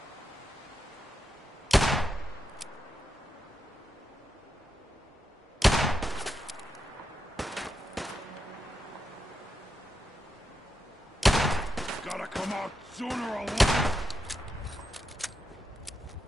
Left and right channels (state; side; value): normal; both; correlation 0.85